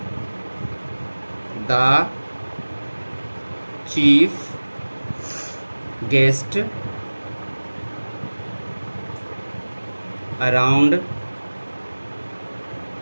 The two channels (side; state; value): both; inverted; correlation -1.00